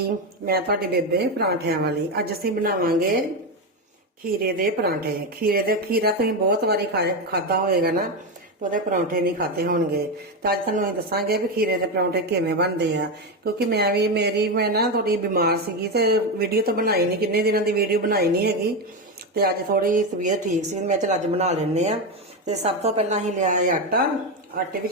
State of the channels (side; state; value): both; normal; correlation 0.11